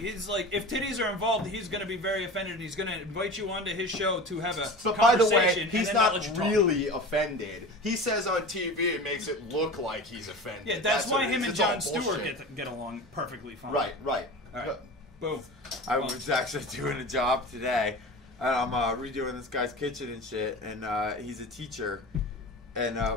like, if titties are involved, he's going to be very offended, and he's going to invite you onto his show to have a But by the conversation. way, he's and then not let you talk. really offended. He says on TV it makes it look like he's offended. Yeah, that's why what it him is. and It's all Jon Stewart bullshit. get along perfectly fine. Right. All right. Boom. I was actually doing a job today, and I'm redoing this guy's kitchen and shit, and he's a teacher, and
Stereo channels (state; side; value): normal; both; correlation 0.33